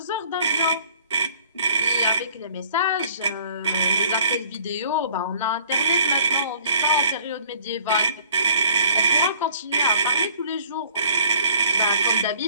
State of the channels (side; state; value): both; inverted; correlation -0.53